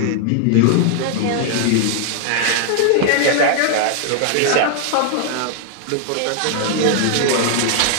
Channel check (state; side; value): different; both; correlation 0.00